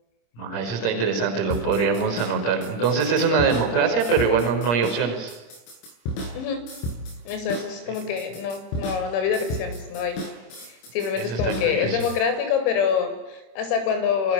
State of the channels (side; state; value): right; late; 26 ms